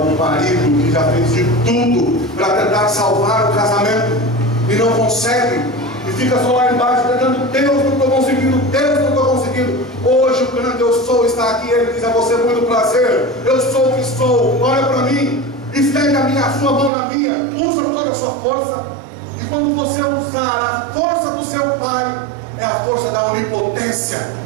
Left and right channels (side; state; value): left; drops out; at 16.9 s